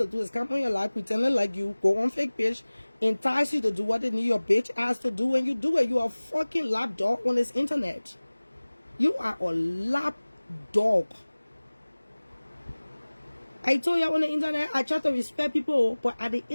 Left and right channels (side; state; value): both; inverted; correlation -1.00